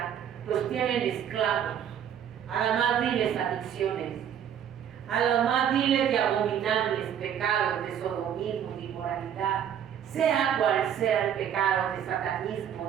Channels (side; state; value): left; quieter; 9.2 dB